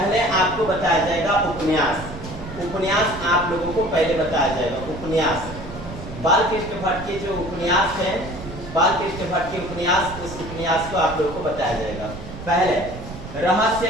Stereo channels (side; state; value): right; noise; rumble, 12 dB below the sound